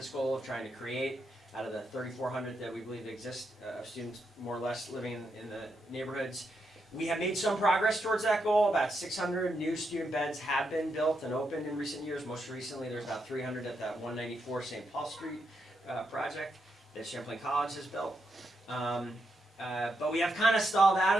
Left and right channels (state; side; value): normal; both; correlation 0.82